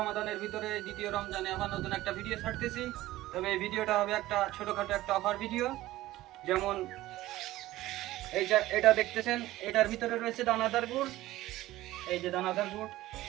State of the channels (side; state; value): left; quieter; 16.3 dB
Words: ভিতরে দ্বিতীয় রমজানে আবার নতুন একটা ভিডিও ছাড়তেছি। তবে এই ভিডিওটা হবে একটা ছোটখাটো একটা অফার ভিডিও। যেমন এই যে এটা দেখতেছেন, এটার ভিতরে রয়েছে দানাদার গুড়। এই যে দানাদার গুড়